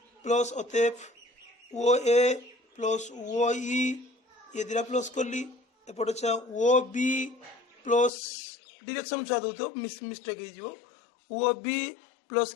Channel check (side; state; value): right; drops out; at 8.1 s